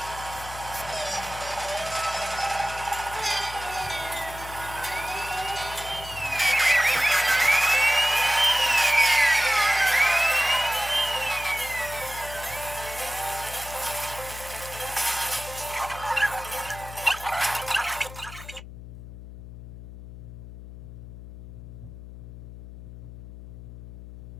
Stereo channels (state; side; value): noise; left; hum, 13 dB below the sound